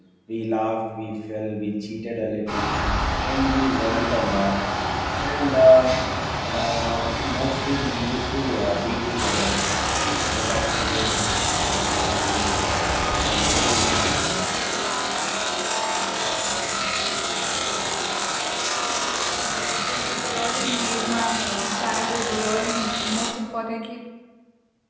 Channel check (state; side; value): identical; both; correlation 1.00